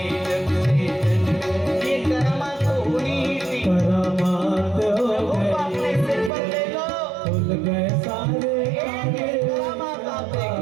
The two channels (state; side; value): drops out; left; at 6.3 s